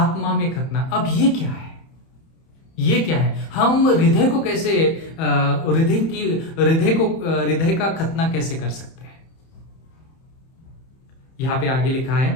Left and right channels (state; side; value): late; right; 31 ms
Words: में खतना। अब ये क्या है? ये क्या है? हम हृदय को कैसे हृदय का खतना कैसे कर सकते हैं? यहां पे आगे लिखा